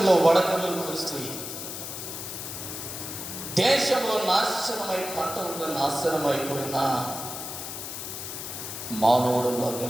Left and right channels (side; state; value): left; noise; hiss, 7 dB below the sound